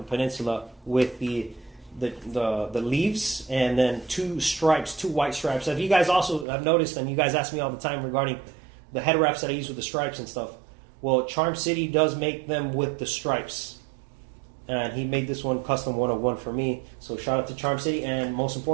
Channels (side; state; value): left; drops out; at 6.5 s